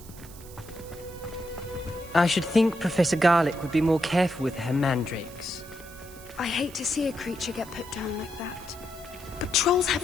I should think Professor Garlick would be more careful with her mandrakes. I hate to see a creature get put down like that. But trolls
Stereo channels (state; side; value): noise; right; hiss, 19 dB below the sound